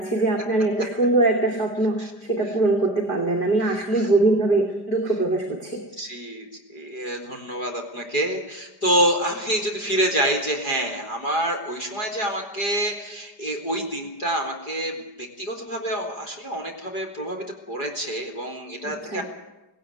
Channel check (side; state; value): right; late; 5.0 ms